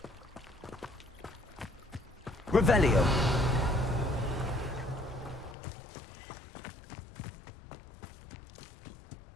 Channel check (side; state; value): right; drops out; at 5.6 s